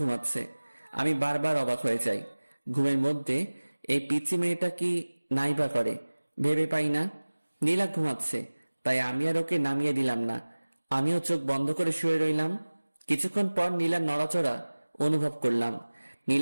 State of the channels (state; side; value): inverted; both; correlation -1.00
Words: আমি বারবার অবাক হয়ে যাই। ঘুমের মধ্যে এই পিচ্চি মেয়েটা কি নাইবা করে ভেবে পাই না। নীলা ঘুমাচ্ছে, তাই আমি আর ওকে নামিয়ে দিলাম না। আমিও চোখ বন্ধ করে শুয়ে রইলাম। কিছুক্ষণ পর নীলার নড়াচড়া অনুভব করলাম।